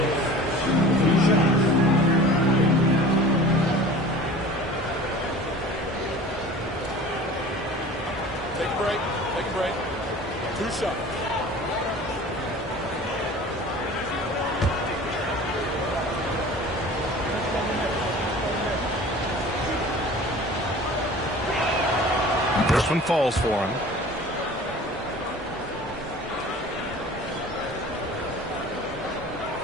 Take a break. Take a break. 2 shots. This one falls for him.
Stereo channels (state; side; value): normal; both; correlation 0.42